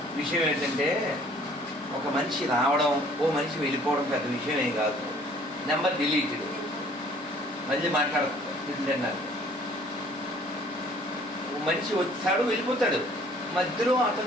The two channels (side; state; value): both; normal; correlation 0.56